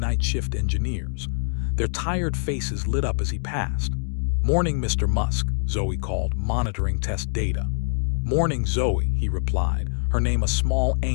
shift engineers. Their tired faces lit up as he passed. Morning, Mr. Musk, Zoe called, monitoring test data. Morning, Zoe, he replied, her name a small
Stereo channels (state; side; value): silent; right; digital silence